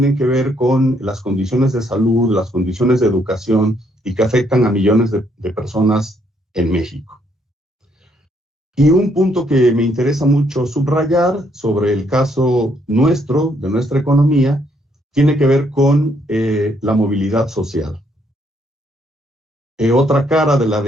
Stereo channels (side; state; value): both; normal; correlation 0.71